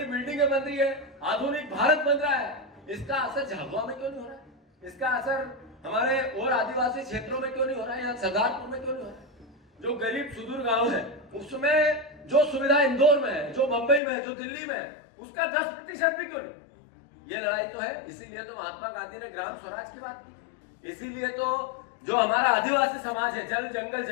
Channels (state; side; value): drops out; right; at 14.0 s